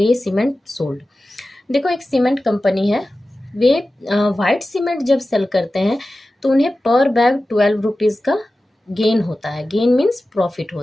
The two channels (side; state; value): both; normal; correlation 0.95